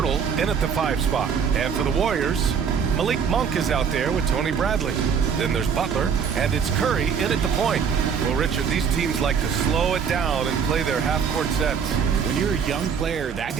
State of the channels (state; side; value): quieter; left; 6.9 dB